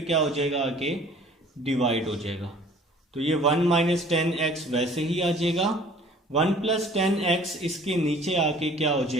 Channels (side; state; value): both; normal; correlation 0.51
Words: क्या हो जाएगा, आके डिवाइड हो जाएगा। तो ये 1 माइनस 10x वैसे ही आ जाएगा, 1 प्लस 10x इसके नीचे आके क्या हो